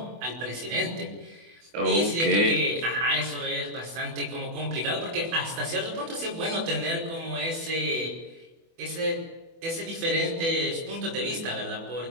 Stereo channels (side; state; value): left; late; 24 ms